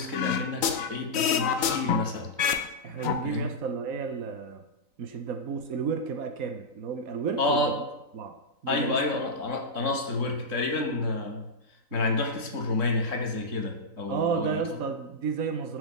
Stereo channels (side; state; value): left; late; 3.9 ms